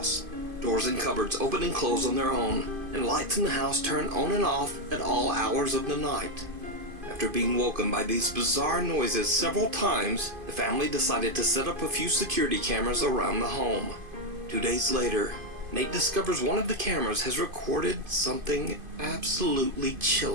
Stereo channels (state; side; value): late; left; 2.5 ms